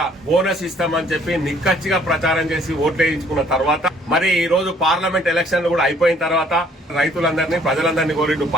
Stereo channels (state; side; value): normal; both; correlation 0.61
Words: బోనస్ ఇస్తామని చెప్పి నిక్కచ్చిగా ప్రచారం చేసి ఓట్లు వేయించుకున్న తర్వాత మరి ఈ రోజు పార్లమెంట్ ఎలక్షన్లు కూడా అయిపోయిన తర్వాత రైతులందరినీ ప్రజలందరినీ కోరిండు